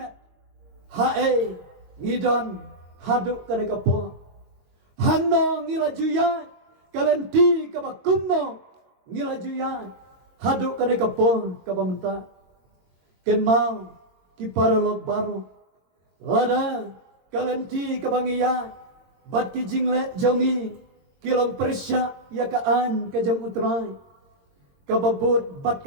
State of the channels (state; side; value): late; left; 22 ms